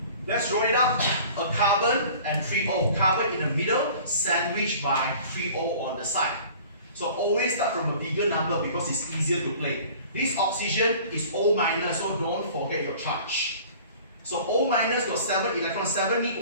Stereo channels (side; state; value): both; inverted; correlation -0.46